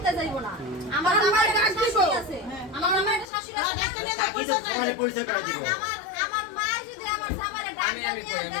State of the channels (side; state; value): right; drops out; at 3.3 s